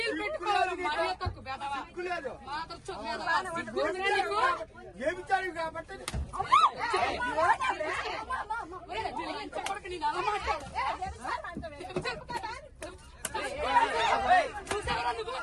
పెట్టుకోవాలి. మర్యాద తక్కువ బెదవా సిగ్గు నీకు. చెప్పడానికి నేను అలా మాట్లాడు. చూసావరా నువ్వు?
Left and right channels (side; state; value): both; identical; correlation 1.00